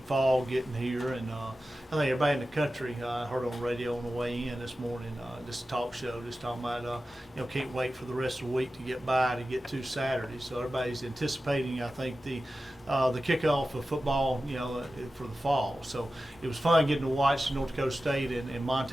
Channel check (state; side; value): normal; both; correlation 0.94